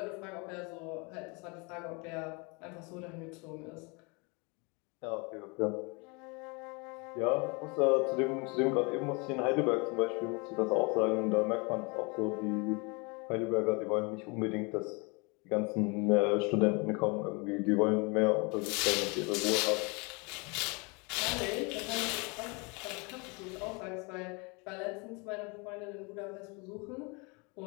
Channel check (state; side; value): quieter; right; 30.2 dB